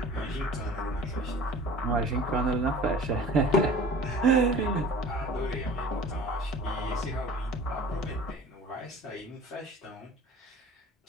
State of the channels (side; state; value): both; normal; correlation 0.44